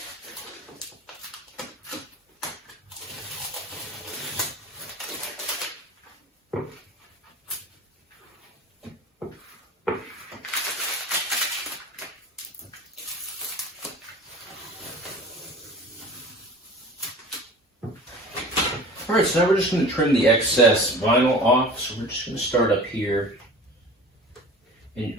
All right, so now we're just going to trim the excess vinyl off. So we're just going to start up here. And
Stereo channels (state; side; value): normal; both; correlation 0.40